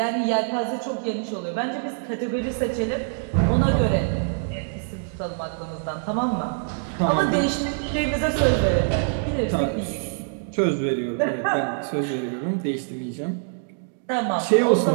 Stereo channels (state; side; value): silent; left; digital silence